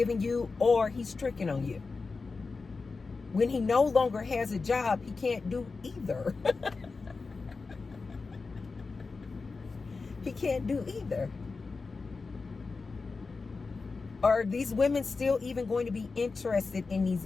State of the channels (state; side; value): quieter; right; 4.2 dB